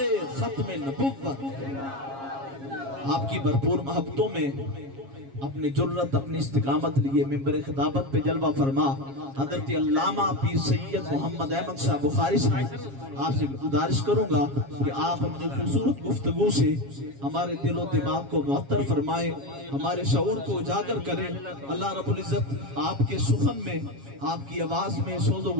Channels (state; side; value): late; left; 7.3 ms